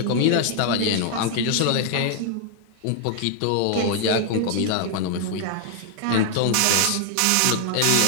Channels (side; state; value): both; different; correlation 0.00